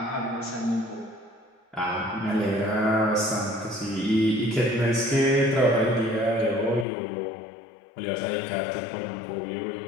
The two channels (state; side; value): drops out; right; at 6.9 s